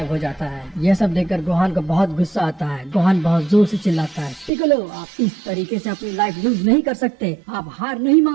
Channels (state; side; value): drops out; left; at 4.5 s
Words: हो जाता है। यह सब देखकर गोहान को बहुत गुस्सा आता है। गोहान बहुत जोर से चिल्लाता है, पिकोलो आप इस तरीके से अपनी लाइफ लूज नहीं कर सकते, आप हार नहीं